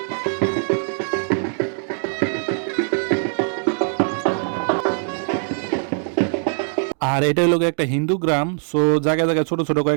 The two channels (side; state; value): left; silent; 65 dB below the other